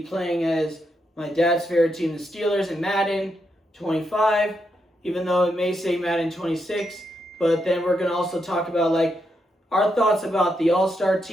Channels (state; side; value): normal; both; correlation 0.82